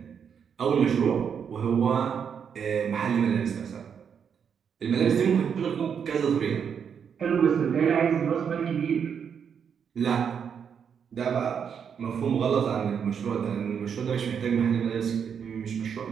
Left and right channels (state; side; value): quieter; left; 7.3 dB